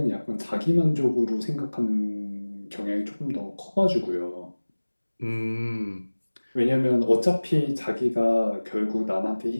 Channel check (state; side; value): inverted; both; correlation -1.00